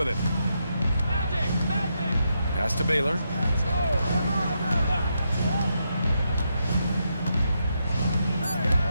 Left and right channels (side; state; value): both; inverted; correlation -0.82